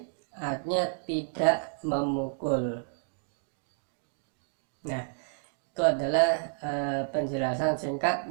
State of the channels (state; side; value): silent; left; digital silence